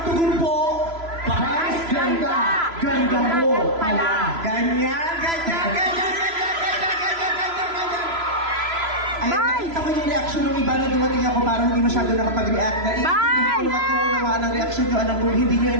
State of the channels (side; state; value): left; late; 3.0 ms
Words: tugon po, Vice ganda, ganda mo pala. Ganyan. Ayun, nakita ko yung reaction ng iba na dumating ako, parang hindi masyado nakapag-react. Hindi ko matuunawaan ang reaction nyo, alam kung hindi nyo